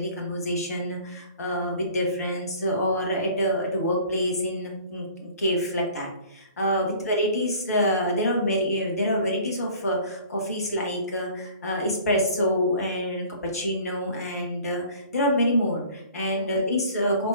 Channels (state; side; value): inverted; both; correlation -0.48